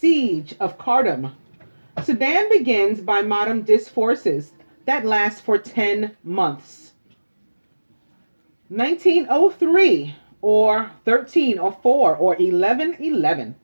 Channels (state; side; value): inverted; both; correlation -1.00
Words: of Khartoum. Sudan begins by Mahmud's forces that last for 10 months. 1903, or 1304, or 1111,